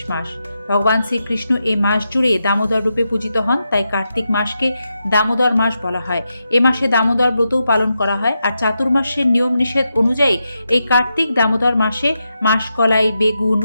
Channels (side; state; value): both; inverted; correlation -0.87